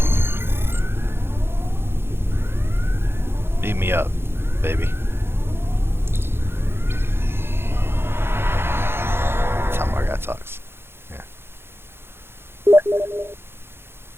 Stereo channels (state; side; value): late; left; 0.11 ms